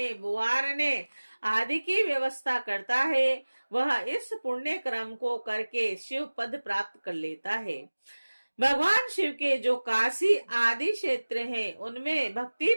बुआरने आदि की व्यवस्था करता है वह इस पुण्य क्रम को करके शिव पद प्राप्त कर लेता है। भगवान शिव के जो काशी आदि क्षेत्र हैं उनमें भक्ति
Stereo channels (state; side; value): inverted; both; correlation -1.00